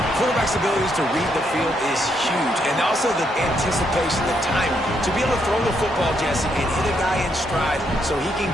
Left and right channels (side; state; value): both; normal; correlation 0.76